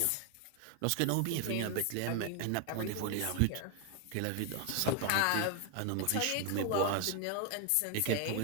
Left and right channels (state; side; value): different; both; correlation 0.01